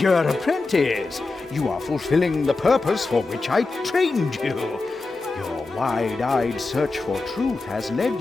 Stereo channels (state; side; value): quieter; right; 3.6 dB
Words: apprentice, you are fulfilling the purpose for which I trained you. Your wide-eyed search for truth has led